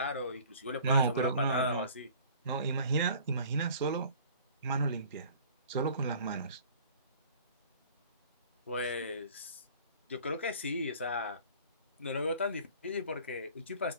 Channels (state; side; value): inverted; both; correlation -0.48